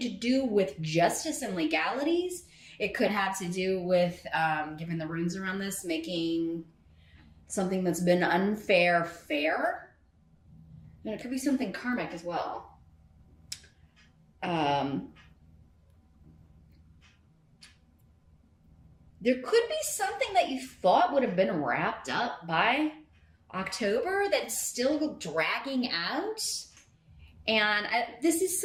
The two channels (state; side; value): identical; both; correlation 1.00